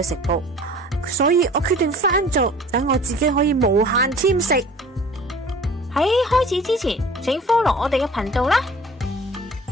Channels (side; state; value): both; normal; correlation 0.46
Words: 食譜，所以我決定翻做，等我自己可以無限添食。喺開始之前，請 follow 我哋嘅頻道啦。